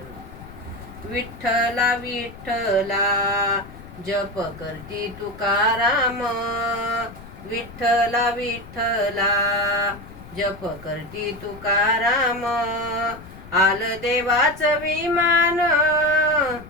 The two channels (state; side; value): noise; left; rumble, 17 dB below the sound